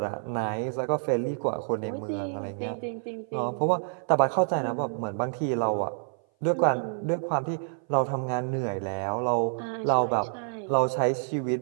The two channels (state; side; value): silent; left; 57 dB below the other